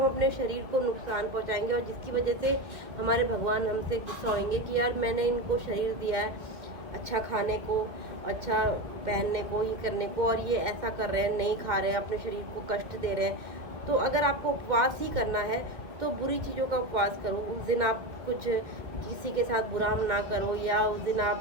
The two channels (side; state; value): left; late; 1.9 ms